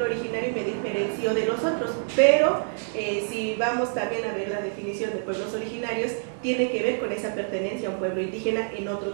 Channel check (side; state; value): left; silent; digital silence